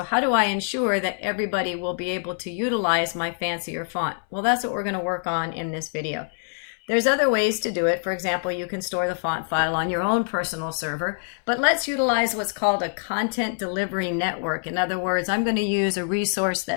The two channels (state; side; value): silent; right; 60 dB below the other